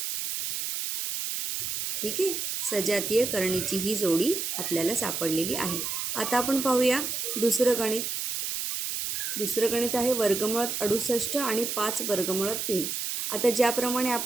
ठीक आहे. सजातीय करणीची ही जोडी आपल्याला सापडलेली आहे. आता आपण पाहूया दुसरं गणित आहे वर्गमुळात 68 आणि 5 वर्गमुळात 3. आता ज्याप्रमाणे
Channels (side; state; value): right; noise; hiss, 3 dB below the sound